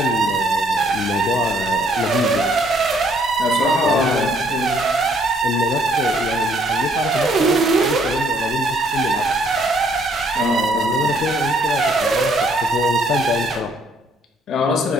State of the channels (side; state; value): both; normal; correlation 0.65